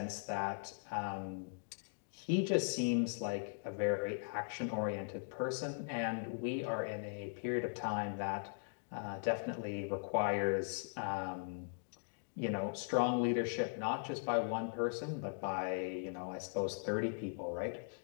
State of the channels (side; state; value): right; silent; digital silence